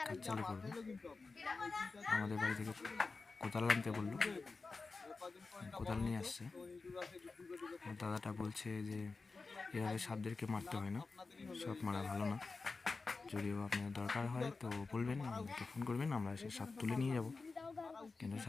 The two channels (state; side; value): quieter; right; 4.1 dB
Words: কাজ চালু করবে। আমাদের বাড়ি থেকে কোদাল আনতে বললো, কোদাল নিয়ে আসছে। দাদাটা বলছে যে এভাবে সাপদেরকে মারতে হয় না, সাপ মারা ভালো না। যদিও আপনার দরকার হয় তো বলবেন, আমাকে ফোন করবেন, আমরা এসে সাপ তুলে নিয়ে যাব, কিন্তু